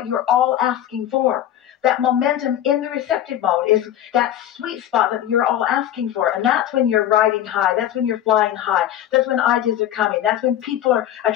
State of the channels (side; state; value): right; quieter; 11.5 dB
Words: you're all asking for. That momentum in the receptive mode is that sweet spot that you're all asking for. And that's when you're riding high. That's when you're flying high. That's when ideas are coming. That's when people are